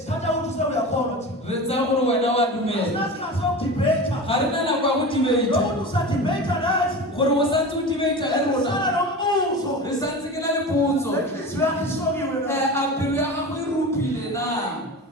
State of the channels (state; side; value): normal; both; correlation 0.30